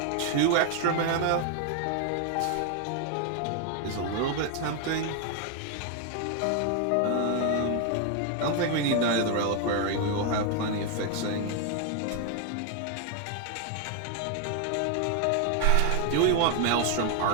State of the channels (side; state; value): both; different; correlation 0.01